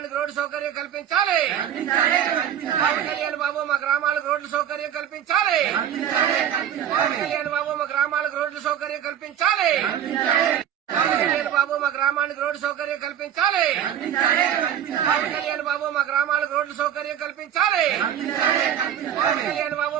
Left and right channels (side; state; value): left; quieter; 9.8 dB